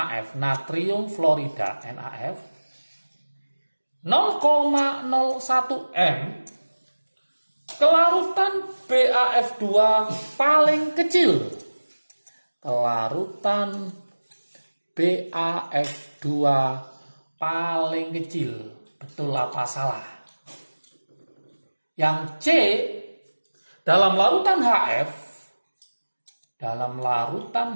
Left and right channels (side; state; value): both; inverted; correlation -1.00